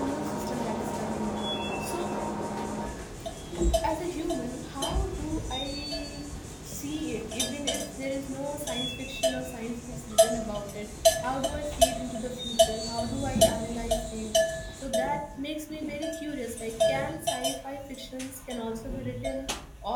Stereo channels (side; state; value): both; identical; correlation 1.00